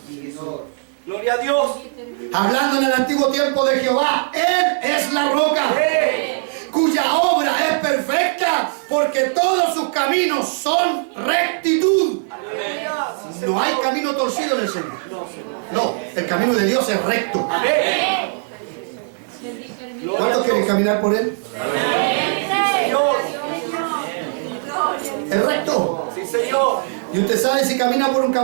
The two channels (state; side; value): silent; left; 66 dB below the other